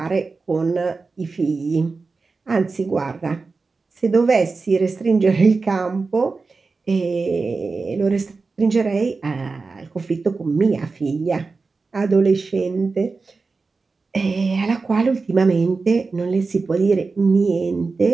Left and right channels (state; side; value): quieter; left; 4.2 dB